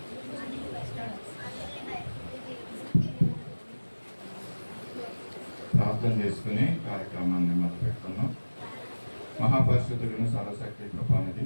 ప్రార్థన చేసుకుని కార్యక్రమాన్ని మొదలుపెట్టుకున్నాం. మహాపరిశుద్ధులను సర్వశక్తి కృపానిధి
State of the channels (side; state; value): both; inverted; correlation -1.00